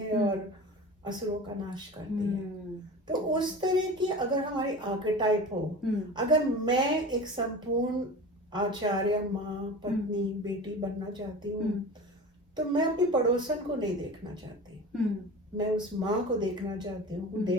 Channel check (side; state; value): both; normal; correlation 0.34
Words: और असुरों का नाश करती है. तो उस तरह की अगर हमारी आर्केटाइप हो, अगर मैं एक संपूर्ण आचार्य, माँ, पत्नी, बेटी बनना चाहती हूँ, तो मैं अपनी पड़ोसन को नहीं देखना चाहती. मैं उस माँ को देखना चाहती हूँ who